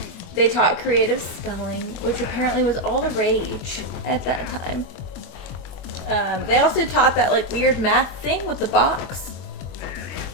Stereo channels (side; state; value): right; late; 23 ms